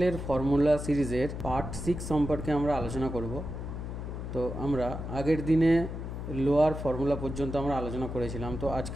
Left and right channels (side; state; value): left; noise; hum, 6 dB below the sound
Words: ফর্মুলা সিরিজের পার্ট 6 সম্পর্কে আমরা আলোচনা করব। তো আমরা আগের দিনে লোয়ার ফর্মুলা পর্যন্ত আমরা আলোচনা করেছিলাম, তো